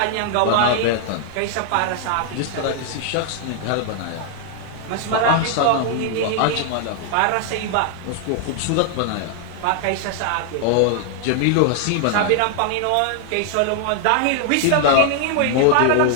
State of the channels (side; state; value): both; different; correlation 0.00